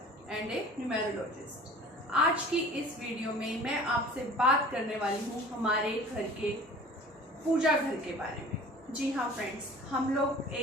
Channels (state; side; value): normal; both; correlation 0.44